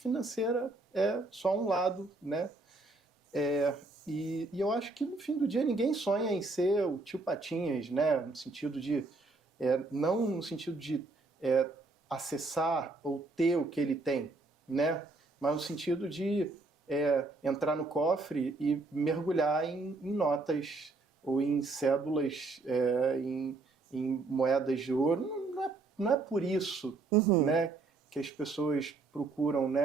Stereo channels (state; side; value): quieter; left; 3.4 dB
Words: é só um lado, né? E eu acho que no fim do dia ninguém sonha em ser o tio Patinhas, né? No sentido de não no sentido de acessar ou ter o que ele tem, né? Mas no sentido de entrar no cofre e mergulhar em notas ou em cédulas, em moedas de ouro. Não é por isso, né, que as pessoas procuram,